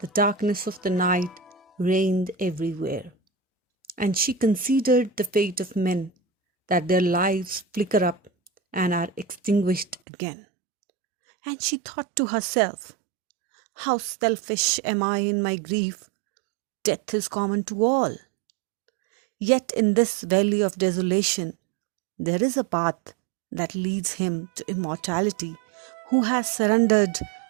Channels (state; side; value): drops out; left; at 10.0 s